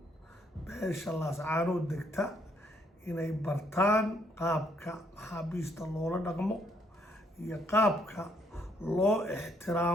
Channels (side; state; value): both; normal; correlation 0.70